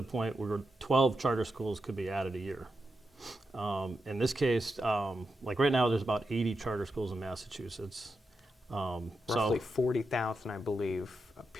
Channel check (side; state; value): both; normal; correlation 0.87